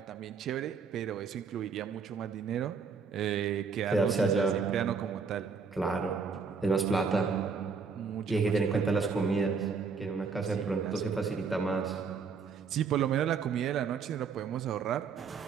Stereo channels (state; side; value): quieter; left; 5.5 dB